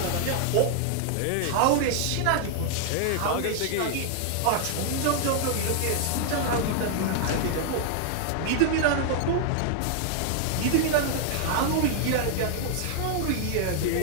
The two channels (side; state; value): both; different; correlation 0.00